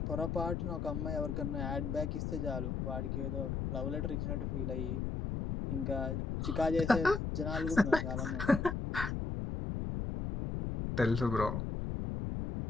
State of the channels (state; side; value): noise; left; rumble, 2 dB below the sound